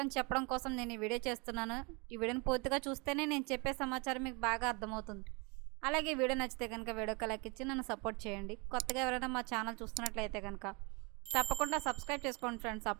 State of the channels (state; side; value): quieter; left; 26.1 dB